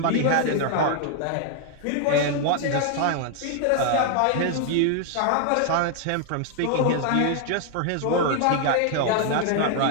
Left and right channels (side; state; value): both; different; correlation 0.00